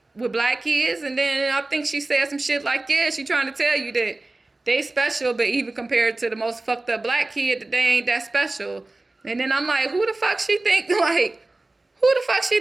with black kids? And then I think she said some shit like, yeah, she trying to tell you that they special, but even compared to the most fucked up black kid, that they ain't that special. And then I'm like, who the fuck she think I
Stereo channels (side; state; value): left; quieter; 3.0 dB